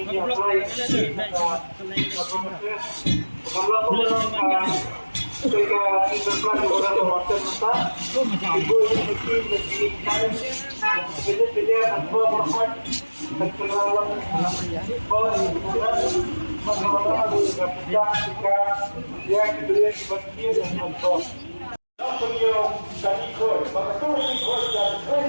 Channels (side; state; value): both; inverted; correlation -1.00